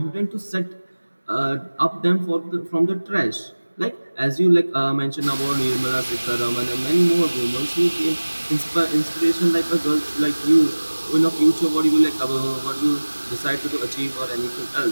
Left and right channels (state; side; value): inverted; both; correlation -1.00